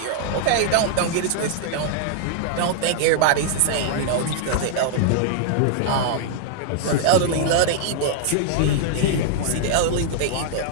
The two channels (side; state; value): both; different; correlation -0.01